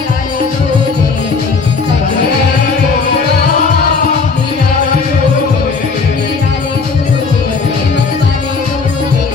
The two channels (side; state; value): right; quieter; 4.7 dB